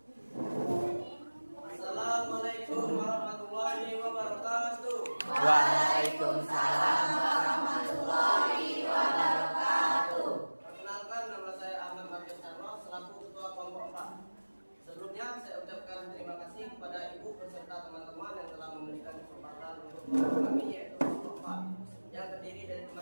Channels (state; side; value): inverted; both; correlation -1.00